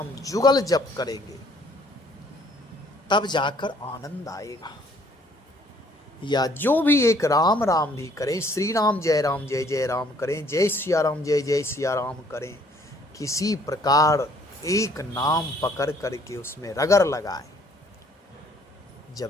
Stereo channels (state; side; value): normal; both; correlation 0.61